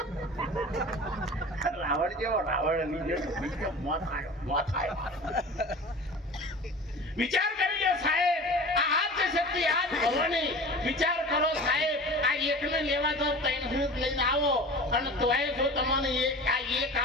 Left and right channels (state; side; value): normal; both; correlation 0.38